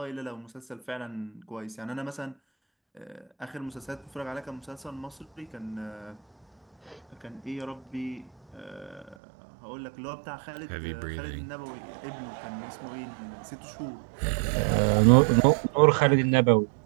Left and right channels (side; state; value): left; drops out; at 9.2 s